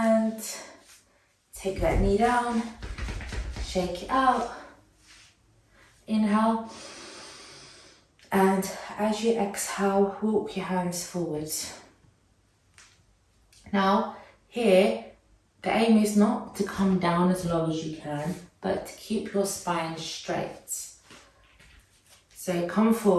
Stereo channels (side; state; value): both; identical; correlation 1.00